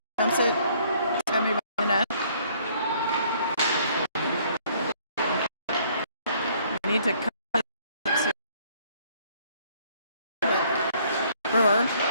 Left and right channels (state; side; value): inverted; both; correlation -0.62